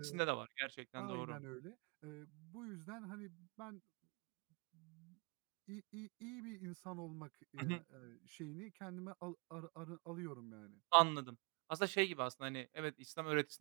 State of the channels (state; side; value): quieter; left; 33.3 dB